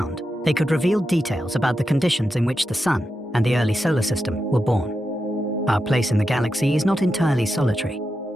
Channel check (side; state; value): both; normal; correlation 0.88